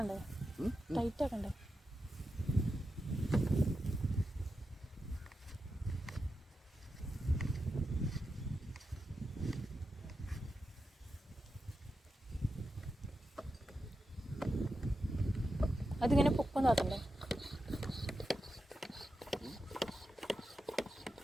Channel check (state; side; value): normal; both; correlation 0.89